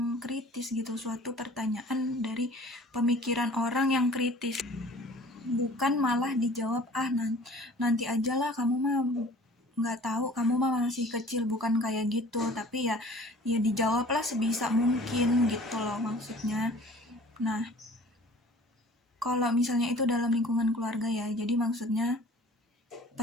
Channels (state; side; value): normal; both; correlation 0.48